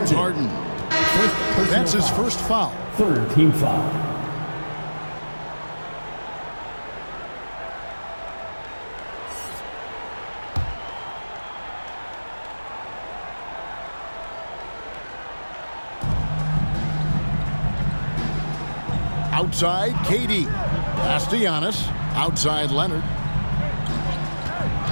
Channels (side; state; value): both; inverted; correlation -1.00